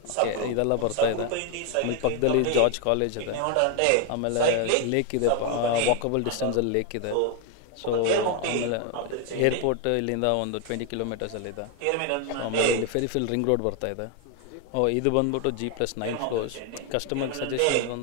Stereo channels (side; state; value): both; different; correlation 0.01